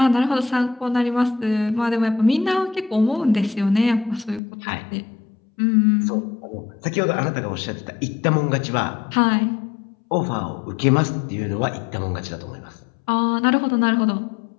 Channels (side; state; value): right; drops out; at 4.4 s